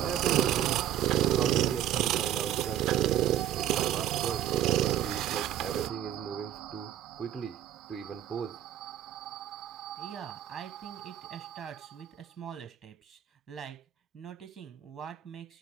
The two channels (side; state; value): left; quieter; 11.5 dB